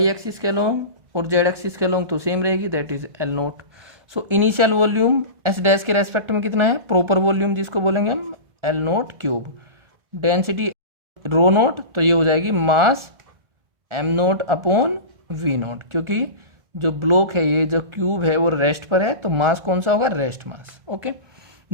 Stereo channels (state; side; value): late; left; 1.4 ms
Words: axis के अलोंग और जेड एक्सिस के अलोंग तो सेम रहेगी, that is L note. So initial volume S dash के respect में कितना है प्रॉपर वॉल्यूम, जिसको बोलेंगे हम L nought cube. Density rho nought, तो ये हो जाएगी mass M nought upon V nought, क्योंकि जो ब्लॉक है ये जो क्यूब है वो रेस्ट पर है, तो मास कौन सा होगा rest mass. Okay,